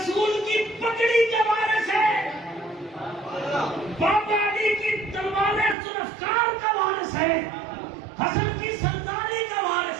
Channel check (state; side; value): drops out; left; at 5.8 s